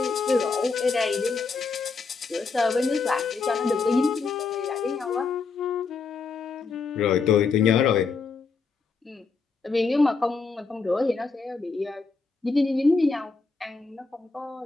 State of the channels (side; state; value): right; quieter; 4.6 dB